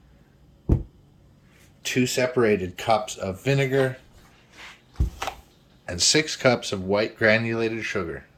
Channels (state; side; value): identical; both; correlation 1.00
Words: 2 separated cups of vinegar, and 6 cups of white granulated sugar.